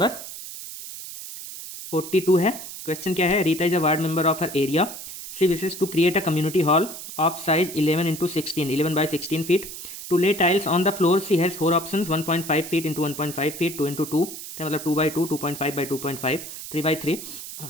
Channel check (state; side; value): noise; right; hiss, 11 dB below the sound